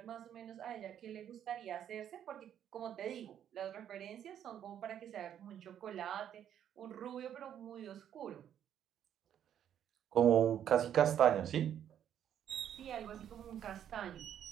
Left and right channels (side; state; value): left; quieter; 9.8 dB